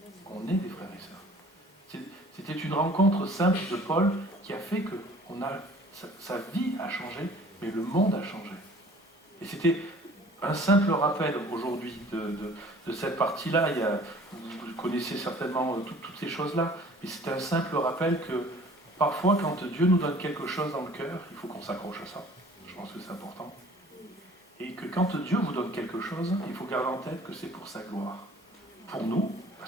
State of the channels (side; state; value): both; normal; correlation 0.50